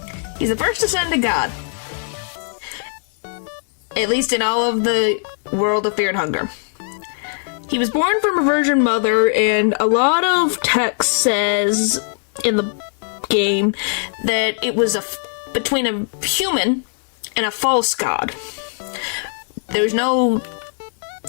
ascended god. At least in all of the world of Fear and Hunger. He was born from a virgin mother, and a lot of text says in the game that it was between a human and a false god. There's no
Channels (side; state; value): right; silent; digital silence